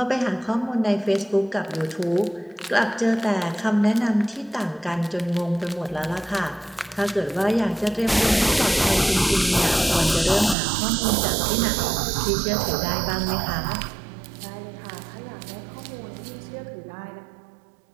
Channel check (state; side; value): drops out; left; at 10.6 s